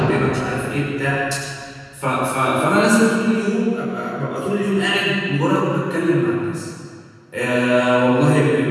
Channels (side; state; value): both; identical; correlation 1.00